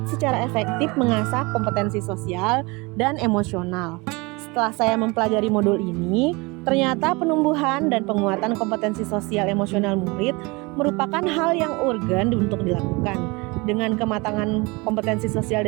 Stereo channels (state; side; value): quieter; left; 25.9 dB